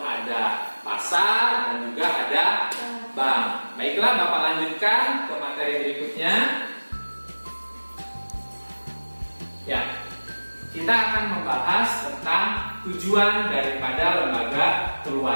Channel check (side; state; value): both; inverted; correlation -1.00